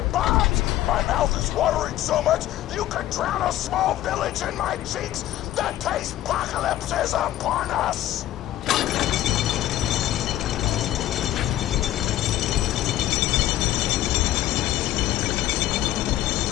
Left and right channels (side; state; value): right; quieter; 13.8 dB